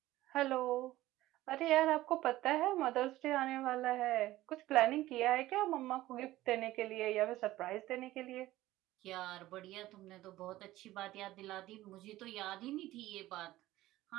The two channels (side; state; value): left; quieter; 16.2 dB